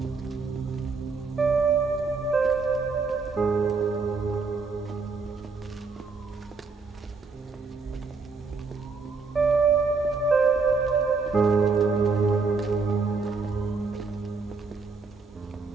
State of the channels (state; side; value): quieter; left; 4.4 dB